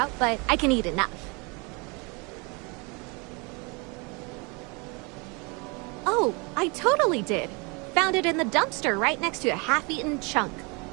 but I can eat enough. Oh, I totally did. Found it in the dumpster right next to a half-eaten chunk.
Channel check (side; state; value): left; quieter; 30.0 dB